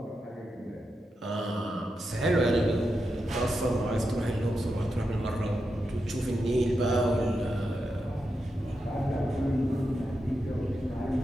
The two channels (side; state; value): both; normal; correlation 0.87